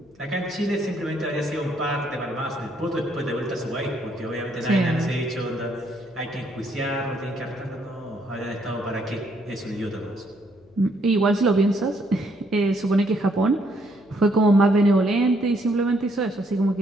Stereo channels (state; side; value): noise; left; hum, 29 dB below the sound